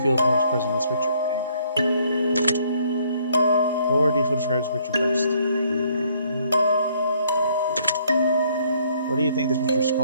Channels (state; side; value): inverted; both; correlation -0.66